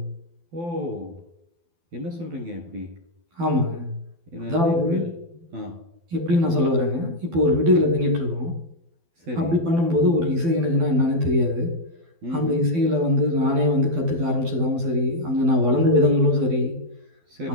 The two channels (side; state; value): left; late; 12 ms